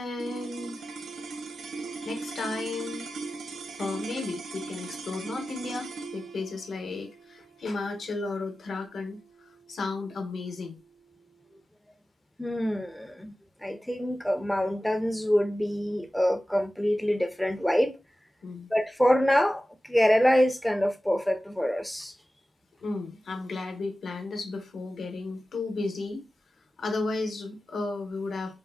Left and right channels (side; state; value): both; normal; correlation 0.95